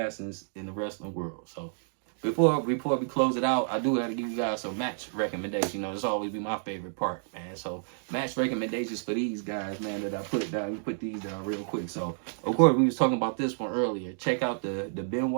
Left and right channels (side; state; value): left; silent; digital silence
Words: in the wrestling world. So before we close it out, I do have to give you guys some match recommendations. This always be my favorite part, man. So match recommendations for these guys, man, that I put down. We put these down real quick. So of course we was talking about this one earlier. Check out the